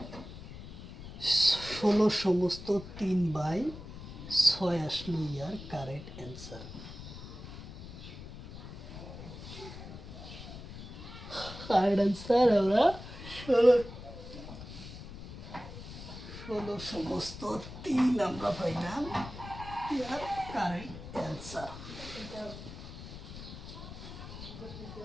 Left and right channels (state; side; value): noise; left; rumble, 12 dB below the sound